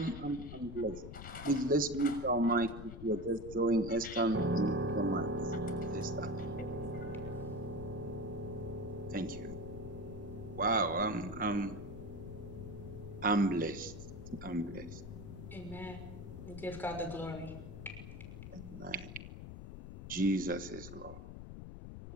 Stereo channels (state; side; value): noise; left; rumble, 10 dB below the sound